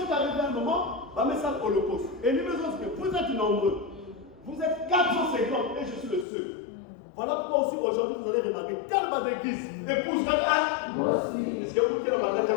arrivés à un moment, va mettre ça à l'holocauste. Et lui me dit que vous êtes nombreux. Vous êtes 450 et je suis le seul. Voilà pourquoi aussi aujourd'hui vous allez remarquer quelle base d'église épouse quelqu'un. Moi aussi. Est-ce que vous qui avez la base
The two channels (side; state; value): right; drops out; at 6.2 s